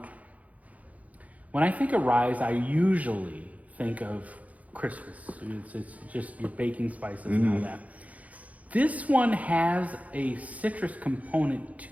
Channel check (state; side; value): late; left; 0.068 ms